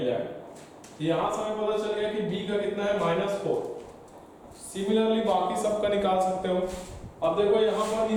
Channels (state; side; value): identical; both; correlation 1.00